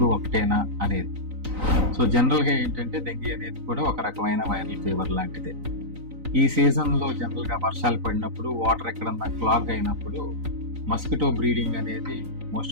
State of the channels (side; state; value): left; late; 3.9 ms